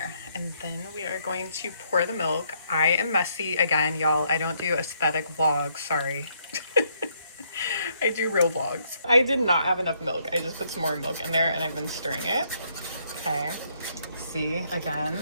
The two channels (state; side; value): inverted; both; correlation -0.72